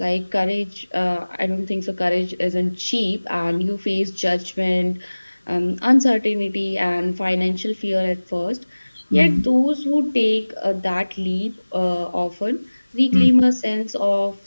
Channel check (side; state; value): both; inverted; correlation -1.00